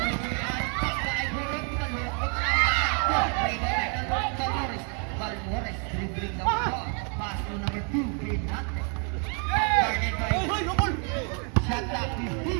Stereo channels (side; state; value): left; quieter; 39.2 dB